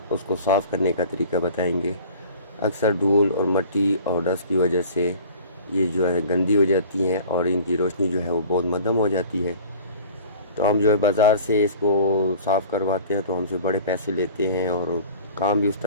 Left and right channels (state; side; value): inverted; both; correlation -0.45